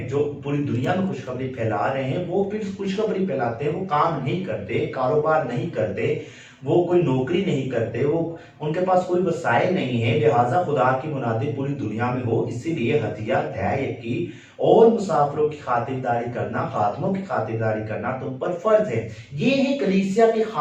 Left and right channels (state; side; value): identical; both; correlation 1.00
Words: जो पूरी दुनिया में खुशखबरी फैला रहे हैं, वो फिर खुशखबरी फैलाते हैं, वो काम नहीं करते, कारोबार नहीं करते, वो कोई नौकरी नहीं करते, वो उनके पास कोई वसाइल नहीं है, लिहाजा खुदा की मुनादी पूरी दुनिया में हो। इसीलिए हदिया दै यकी और मुसाफिरों की खातिरदारी करना, खादमों की खातिरदारी करना तुम पर फर्ज है। ये है कलीसिया के